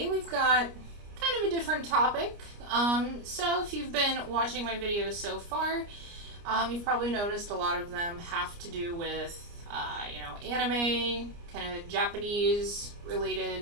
we've got kind of a different topic. So if you've been watching my videos so far, you've probably noticed a lot of them have to do with, anime, kind of Japanese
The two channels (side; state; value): left; late; 29 ms